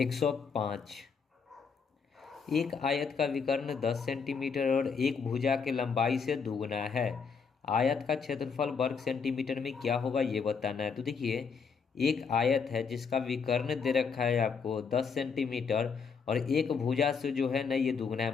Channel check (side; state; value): right; quieter; 5.8 dB